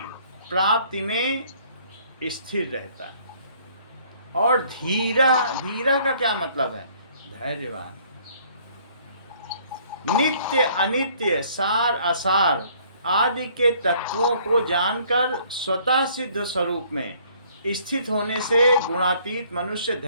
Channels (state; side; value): inverted; both; correlation -0.60